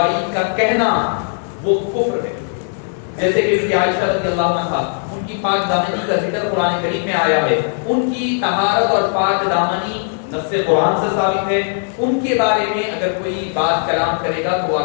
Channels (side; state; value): right; silent; digital silence